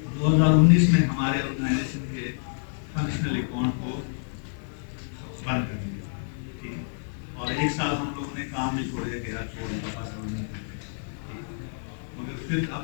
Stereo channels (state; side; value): silent; right; digital silence